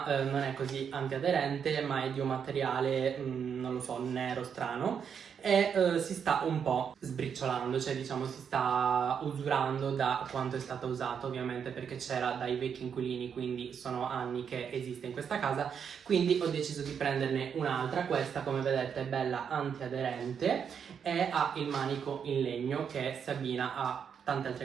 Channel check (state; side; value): quieter; left; 7.3 dB